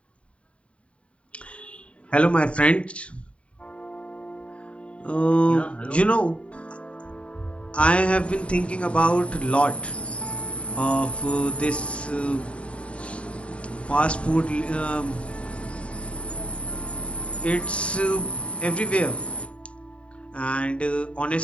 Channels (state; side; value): late; right; 0.061 ms